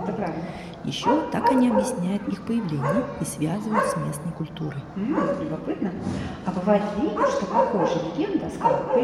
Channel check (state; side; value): identical; both; correlation 1.00